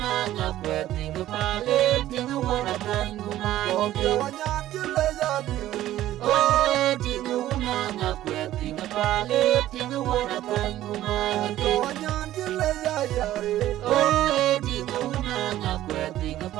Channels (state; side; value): quieter; left; 13.8 dB